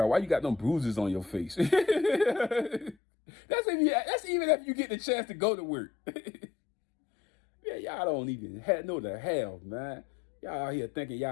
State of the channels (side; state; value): right; drops out; at 3.0 s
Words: out why you got them bruises on your face. That's even if you get the chance to go to work. Yeah, y'all don't even know the hell, man. Y'all out here thinking